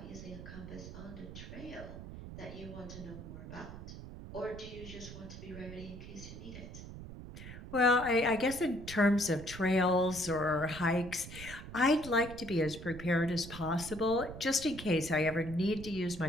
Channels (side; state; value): right; noise; rumble, 12 dB below the sound